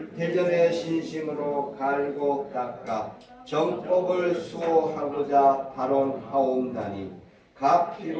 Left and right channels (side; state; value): both; identical; correlation 1.00